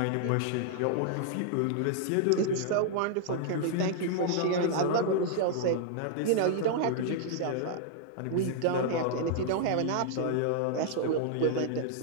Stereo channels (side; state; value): both; different; correlation -0.01